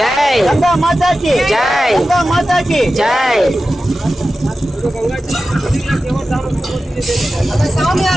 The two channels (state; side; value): normal; both; correlation 0.94